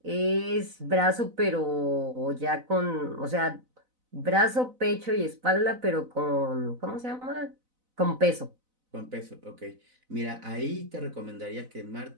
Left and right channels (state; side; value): late; left; 4.0 ms